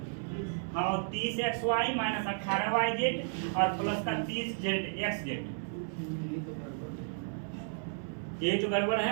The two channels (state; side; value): silent; left; digital silence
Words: हाँ 30xy माइनस 18yz और प्लस का 30xz। ये जो गड़बड़